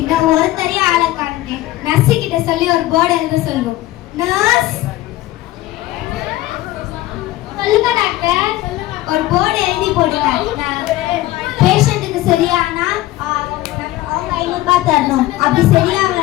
இன்னும் ஒருத்தரையும் ஆளை காணுங்க. நர்ஸு கிட்ட சொல்லி ஒரு போர்டு எழுத சொல்லுவோம். நர்ஸ், சொல்லுங்க டாக்டர். ஒரு போர்டு எழுதி போடுங்க. பேஷண்ட்டுக்கு சரியானா அவங்க 500 ரூபாய் தரணும், அப்படி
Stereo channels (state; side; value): quieter; right; 16.3 dB